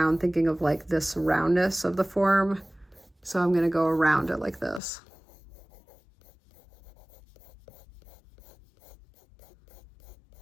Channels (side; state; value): right; drops out; at 4.8 s